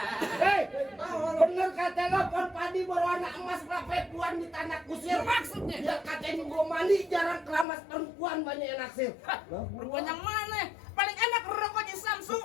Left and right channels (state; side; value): drops out; right; at 7.7 s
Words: Hei, bener kata lo pon padi berwarna emas perempuan di tanah kusir. Maksudnya? Ya katanya gua mandi jarang keramas perempuan banyak yang naksir. Perempuan yang mana? Paling enak rokok di Samsung.